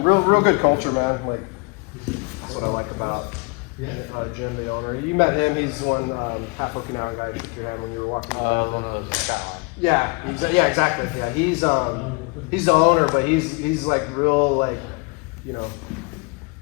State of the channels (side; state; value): right; quieter; 30.1 dB